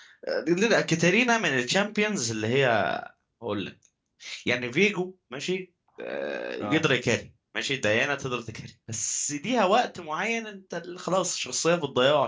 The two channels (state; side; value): identical; both; correlation 1.00